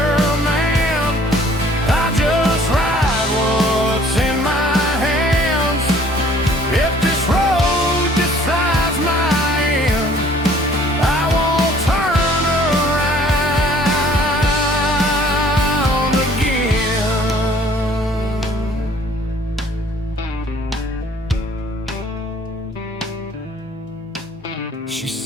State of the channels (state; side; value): normal; both; correlation 0.56